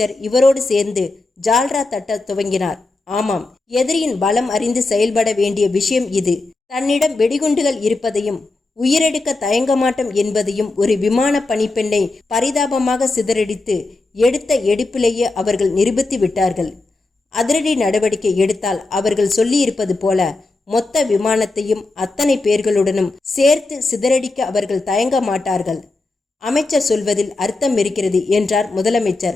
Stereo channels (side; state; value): right; quieter; 3.3 dB